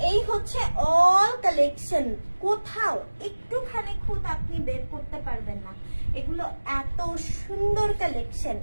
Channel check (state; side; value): inverted; both; correlation -1.00